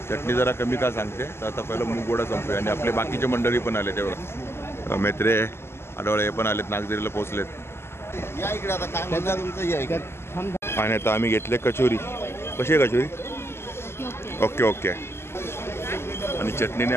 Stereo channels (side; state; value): right; late; 0.12 ms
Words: चटणी जरा कमी का सांगते. तर आता पहिलं मूगवडा संपूया. आणि आपले बाकीचे मंडळी पण आले तेव्हा. मेत्रे आडवळे हे पण आलेत. नागझरीला पोहोचलेत. आणि आता आम्ही घेतले कचोरी. कशी आहे कचोरी? Okay okay. आणि चटणीने